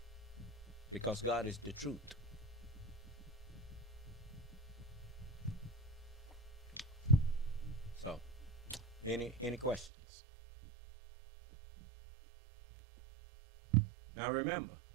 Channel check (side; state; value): left; drops out; at 9.9 s